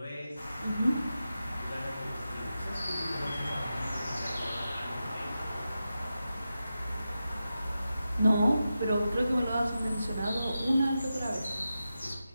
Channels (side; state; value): both; inverted; correlation -0.91